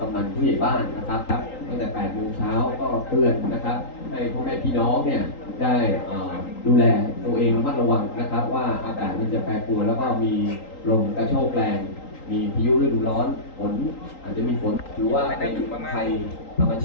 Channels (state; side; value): late; right; 3.8 ms